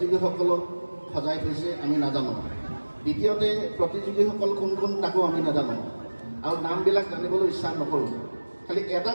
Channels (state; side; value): inverted; both; correlation -1.00